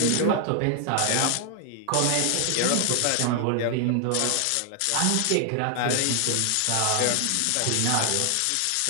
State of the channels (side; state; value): both; different; correlation 0.00